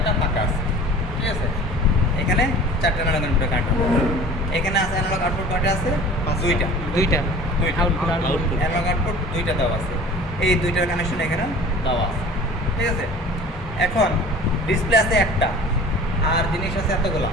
ফাঁকা আছে। ঠিক আছে? এখানে 4টা অ্যানালগ ইনপুটের কানেকশন। এখানে আছে অ্যানালগ আউটপুট কয়টা আছে? 2টা। দুইটা আউটপুট আউটপুট অ্যানালগ আউটপুট 2টা দেওয়া আছে। এই 2টার কানেকশন এখানে দেওয়া আছে। ঠিক আছে? এখন ডিসপ্লে আছে একটা, আর জিনিস আছে এতগুলা।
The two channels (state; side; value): normal; both; correlation 0.43